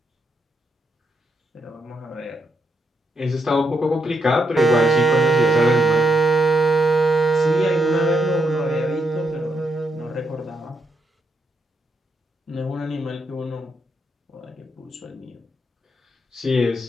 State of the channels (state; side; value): normal; both; correlation 0.79